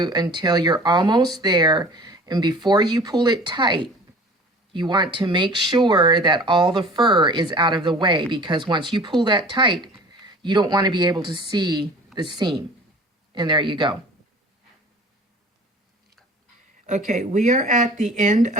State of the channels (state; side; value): normal; both; correlation 0.44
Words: until you're almost there, and before you pull it tight, you want to make sure that all the fur is out of the way, because once you pull that tight, you don't want to be able to see the seam. And there you go. Okay, we are at the end